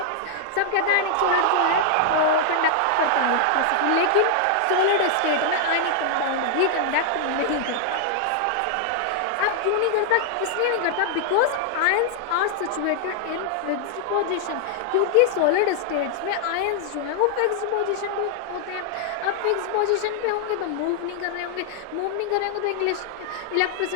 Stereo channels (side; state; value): both; different; correlation -0.01